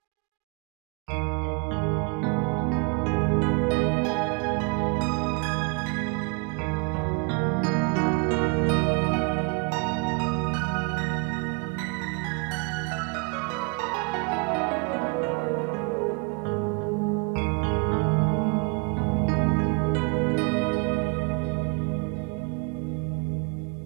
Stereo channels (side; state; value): left; quieter; 32.0 dB